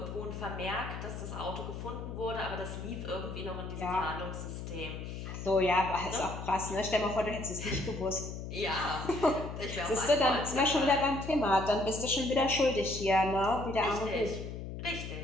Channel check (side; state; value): left; noise; hum, 8 dB below the sound